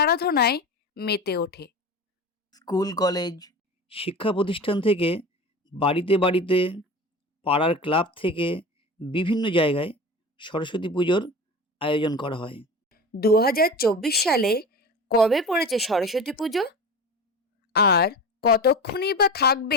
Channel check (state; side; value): normal; both; correlation 0.31